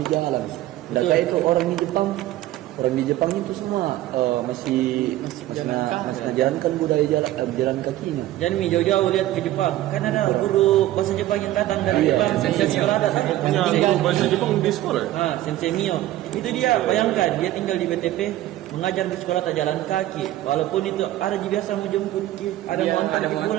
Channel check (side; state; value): left; quieter; 14.8 dB